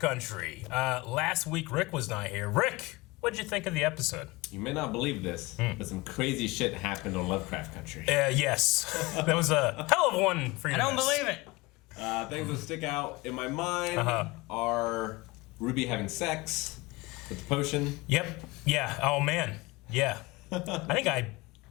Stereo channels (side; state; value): right; quieter; 22.8 dB